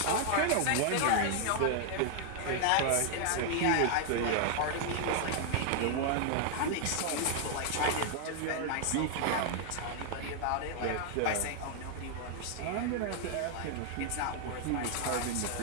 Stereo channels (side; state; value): both; different; correlation 0.00